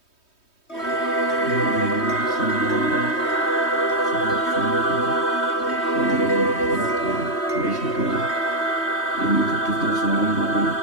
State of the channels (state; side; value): late; right; 3.2 ms